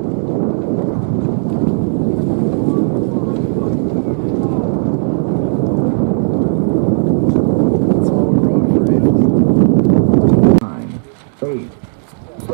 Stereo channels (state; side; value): silent; left; digital silence